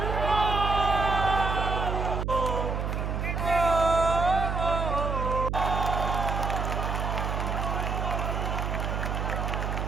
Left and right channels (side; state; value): right; noise; hum, 1 dB below the sound